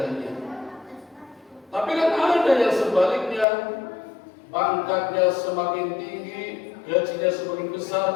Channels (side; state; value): right; drops out; at 3.5 s